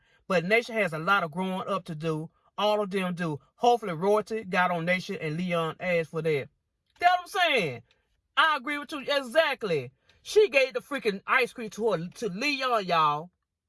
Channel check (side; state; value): both; identical; correlation 1.00